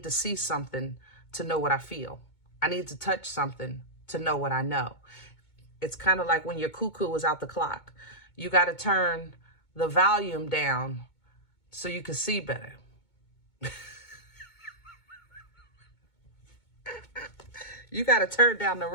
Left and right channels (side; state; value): right; late; 2.2 ms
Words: to see something to know what I feel. I need to touch something to know what I know. It's kind of like when your cuckoo is out the clock. You got to turn the volume down so you can see better. You got to turn down the